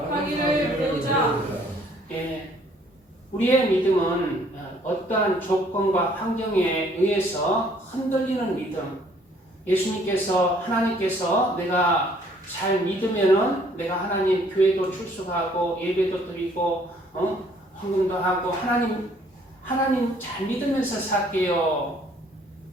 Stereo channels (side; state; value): both; normal; correlation 0.61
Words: 배우자. 우리의 믿음은 어떠한 조건과 환경에 의해서 흔들리는 믿음. 예수님께서 하나님께서 내가 잘 믿으면은 내가 하나님 교회도 출석하고 예배도 드리고 헌금도 하고 하나님 잘 믿으면서 살게요.